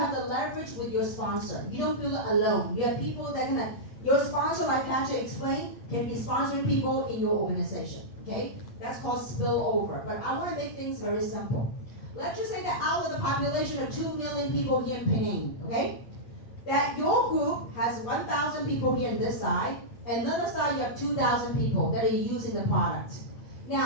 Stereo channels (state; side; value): late; right; 8.4 ms